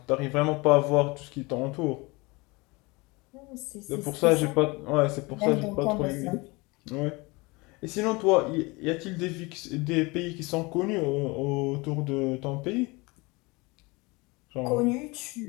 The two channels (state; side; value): quieter; right; 25.2 dB